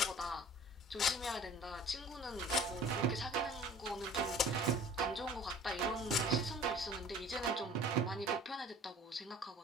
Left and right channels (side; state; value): both; normal; correlation 0.47